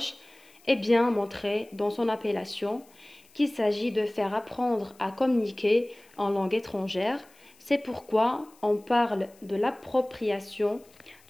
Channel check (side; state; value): left; noise; hiss, 29 dB below the sound